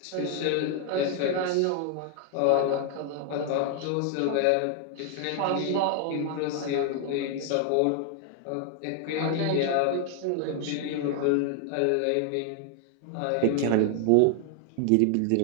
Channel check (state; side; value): different; both; correlation 0.00